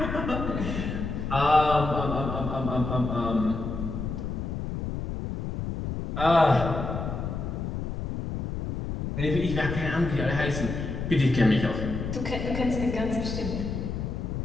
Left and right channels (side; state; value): left; noise; rumble, 4 dB below the sound